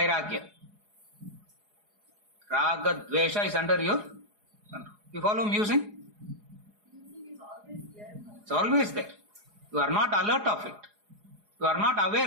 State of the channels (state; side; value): late; left; 4.8 ms